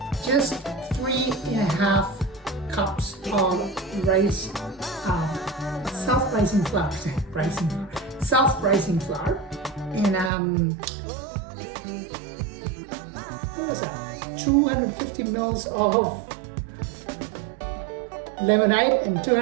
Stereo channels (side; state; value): left; drops out; at 10.3 s